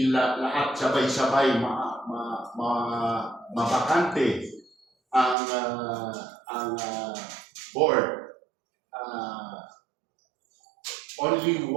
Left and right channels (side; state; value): left; drops out; at 5.4 s